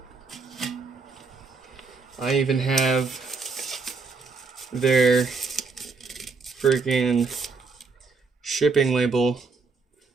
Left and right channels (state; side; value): quieter; left; 4.4 dB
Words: I even have their freaking shipping label